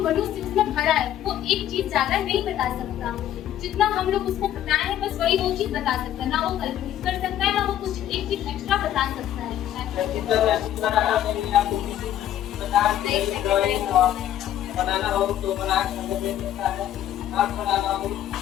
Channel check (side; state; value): right; quieter; 11.7 dB